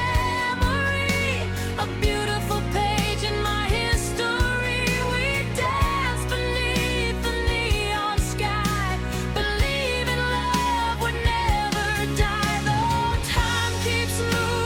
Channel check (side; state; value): both; identical; correlation 1.00